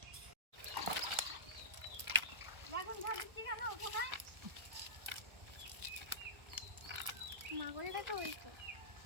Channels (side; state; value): left; late; 1.4 ms